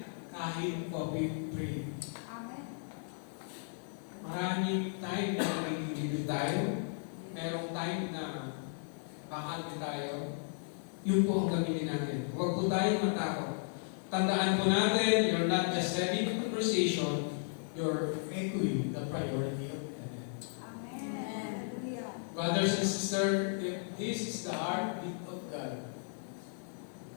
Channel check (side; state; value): right; silent; 54 dB below the other